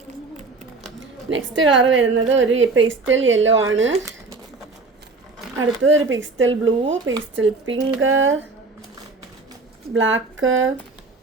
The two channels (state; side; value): quieter; left; 3.8 dB